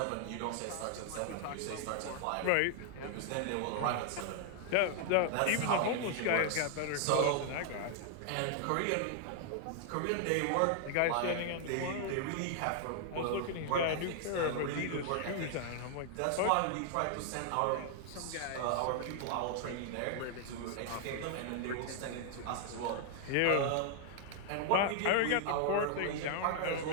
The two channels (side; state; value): both; different; correlation 0.00